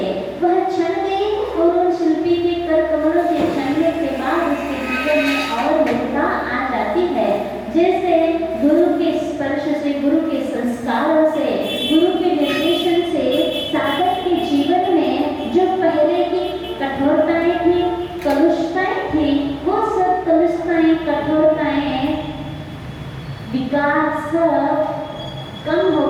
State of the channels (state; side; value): identical; both; correlation 1.00